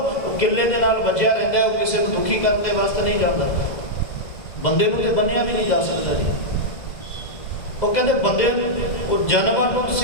किले दे नाल वजिया रहिंदा है, किसी को दुखी करने वास्ते नहीं जाता। बंदे नूं ते बन्निया भी नहीं जा सकता जी। वो कहते बंदे जानवर नूं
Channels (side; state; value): right; late; 2.0 ms